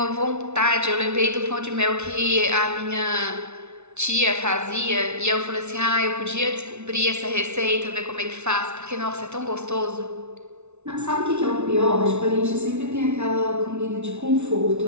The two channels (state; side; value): late; left; 0.82 ms